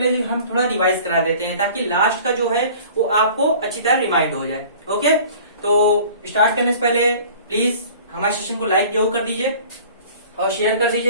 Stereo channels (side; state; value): both; inverted; correlation -0.47